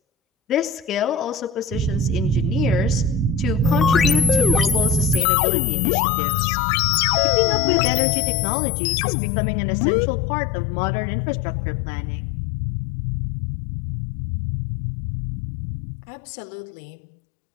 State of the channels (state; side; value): drops out; right; at 5.2 s